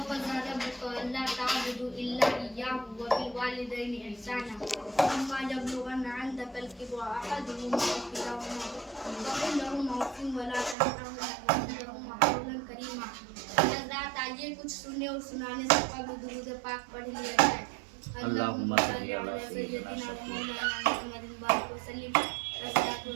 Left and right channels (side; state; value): left; drops out; at 10.8 s